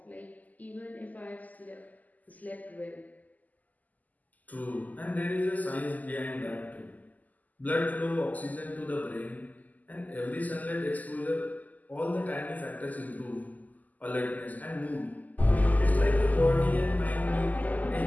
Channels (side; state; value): right; late; 0.080 ms